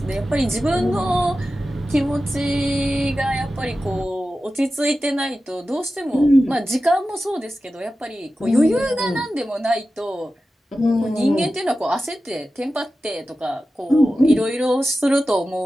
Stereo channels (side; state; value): both; normal; correlation 0.93